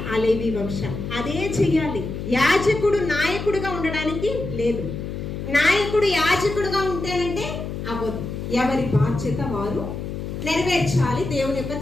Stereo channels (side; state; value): left; noise; hum, 6 dB below the sound